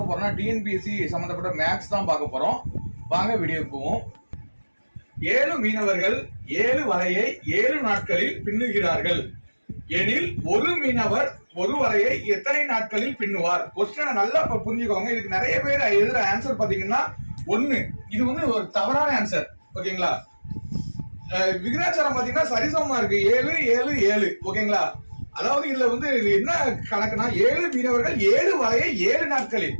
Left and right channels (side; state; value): both; inverted; correlation -1.00